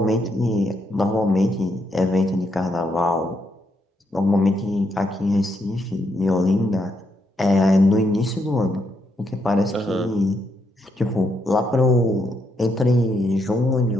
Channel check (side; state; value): both; normal; correlation 0.78